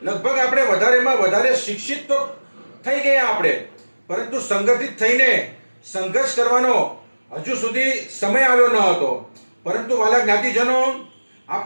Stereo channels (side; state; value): both; inverted; correlation -1.00